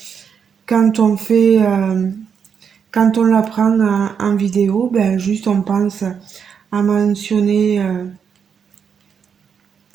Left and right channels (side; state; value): left; quieter; 7.0 dB